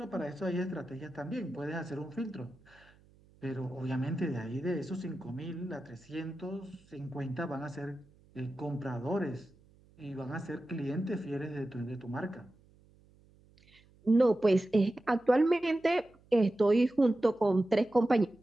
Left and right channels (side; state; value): right; noise; hum, 29 dB below the sound